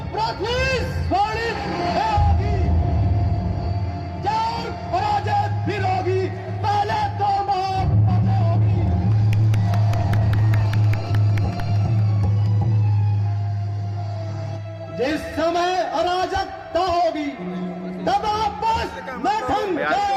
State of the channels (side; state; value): both; identical; correlation 1.00